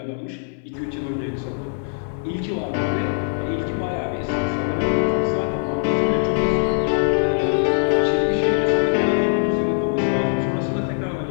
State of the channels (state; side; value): silent; right; digital silence